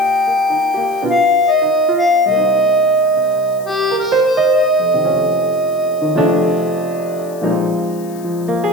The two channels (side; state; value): left; noise; hiss, 22 dB below the sound